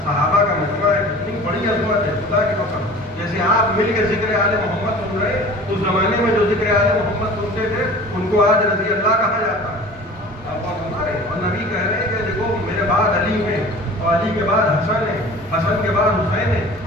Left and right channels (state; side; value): normal; both; correlation 0.42